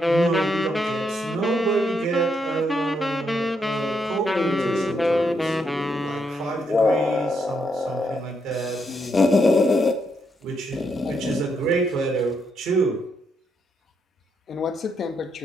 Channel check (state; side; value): normal; both; correlation 0.78